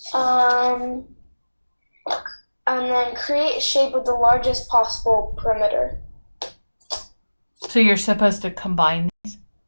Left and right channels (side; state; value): both; inverted; correlation -1.00